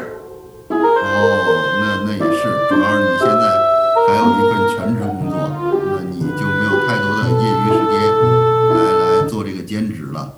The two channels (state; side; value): identical; both; correlation 1.00